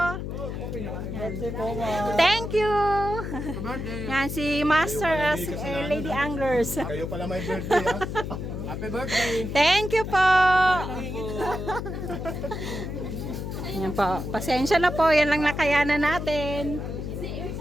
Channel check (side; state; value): left; noise; hum, 5 dB below the sound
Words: Yan. Thank you. Yan si Master Lady Anglers. Kayo pala may birthday ha. Happy birthday. Thank you po. Yan po. Pasensya na po. Yan lang nakayanan natin.